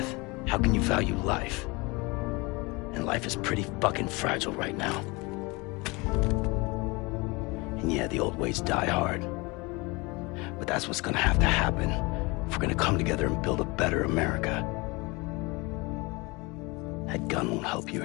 how can you value life? And life is pretty fucking fragile right now. And yeah, the old ways die hard. But that's what's gonna have to happen if we're gonna come together and build a better America. That gun won't help you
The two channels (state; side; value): quieter; right; 25.7 dB